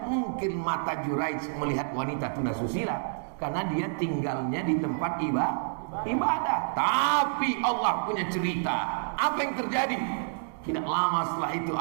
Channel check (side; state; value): left; silent; digital silence